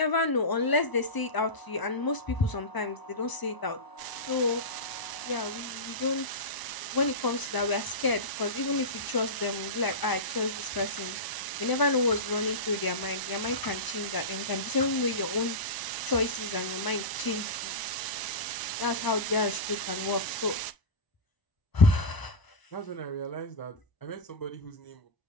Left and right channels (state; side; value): late; right; 1.0 ms